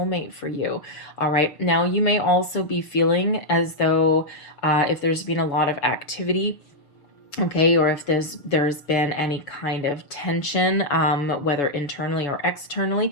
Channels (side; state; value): right; late; 6.6 ms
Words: for you. All right, now you may also be feeling as though if there's been a lot of activity, okay, or if there's been any kind of tension, whether internally or